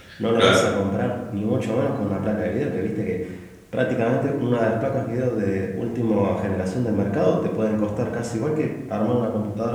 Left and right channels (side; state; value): both; identical; correlation 1.00